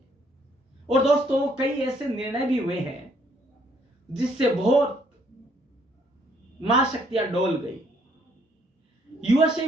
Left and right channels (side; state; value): both; normal; correlation 0.67